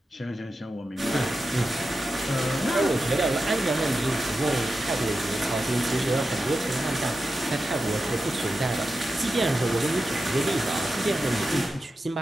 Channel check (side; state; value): both; normal; correlation 0.91